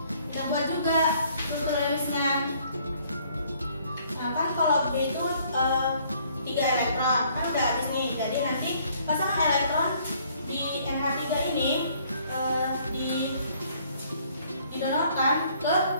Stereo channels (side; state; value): both; inverted; correlation -0.62